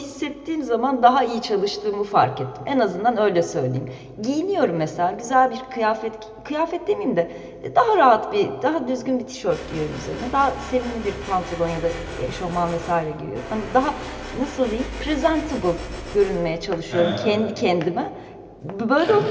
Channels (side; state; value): both; identical; correlation 1.00